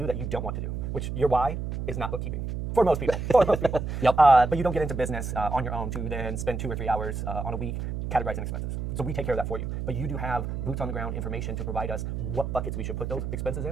that you don't want to do, which your why is not bookkeeping. For most people. Yep. But you don't get into business on your own to then spend 2 or 3 hours on a week categorizing expenses. So we take care of that for you. But you do have boots on the ground information to provide us what buckets we should put those expenses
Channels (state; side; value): noise; right; hum, 4 dB below the sound